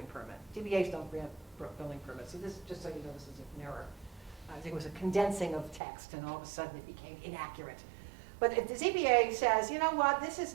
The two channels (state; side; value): drops out; left; at 5.8 s